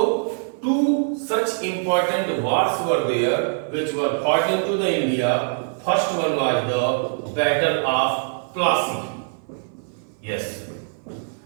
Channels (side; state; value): left; silent; 58 dB below the other